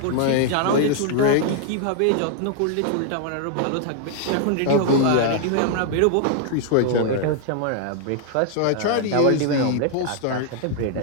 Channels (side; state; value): both; different; correlation 0.00